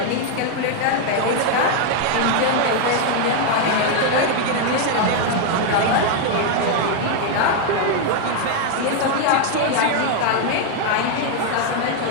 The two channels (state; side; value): different; both; correlation 0.00